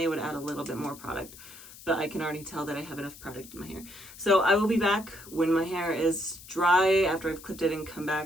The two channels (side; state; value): left; noise; hiss, 18 dB below the sound